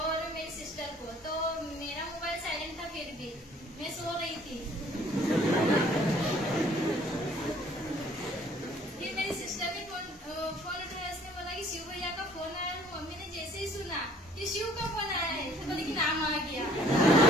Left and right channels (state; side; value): normal; both; correlation 0.57